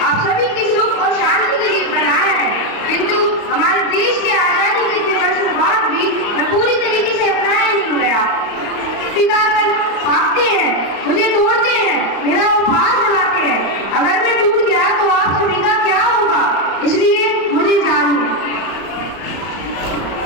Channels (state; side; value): late; right; 35 ms